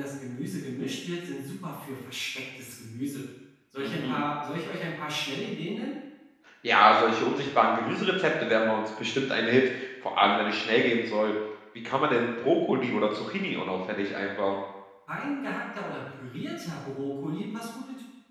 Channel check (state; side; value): identical; both; correlation 1.00